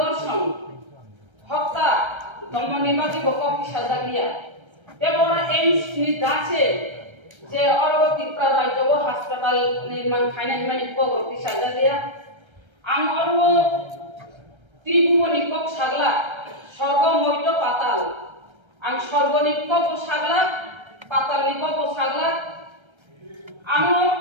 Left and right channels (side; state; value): left; late; 1.3 ms